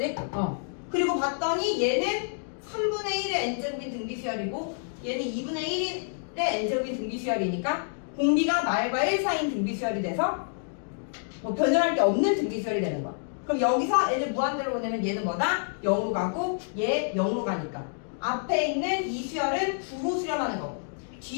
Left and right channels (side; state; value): right; silent; digital silence